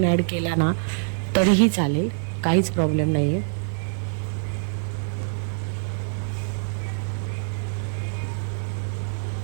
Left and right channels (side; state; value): left; silent; 62 dB below the other